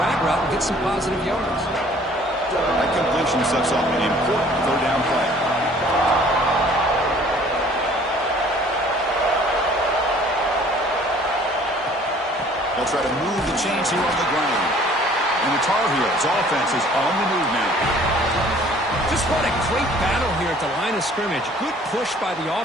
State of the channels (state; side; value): normal; both; correlation 0.54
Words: route and gets some positive yards. That completion sets off an important third down play. They'll try to move the chains here on the ground. And the Tar Heels offense is on the move now. Just what a great battle here at the line of scrimmage. Good push by the